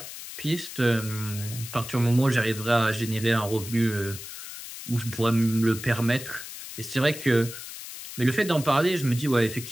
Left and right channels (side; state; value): left; noise; hiss, 11 dB below the sound